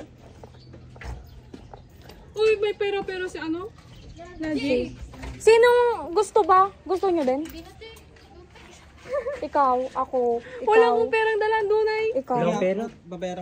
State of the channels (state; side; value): identical; both; correlation 1.00